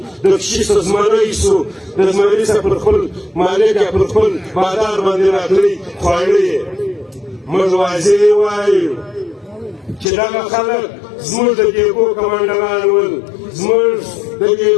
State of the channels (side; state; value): right; drops out; at 10.1 s